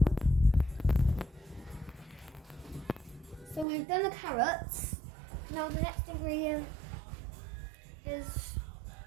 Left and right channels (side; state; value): left; drops out; at 3.7 s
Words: So we've done the carrots. Now the next ingredient is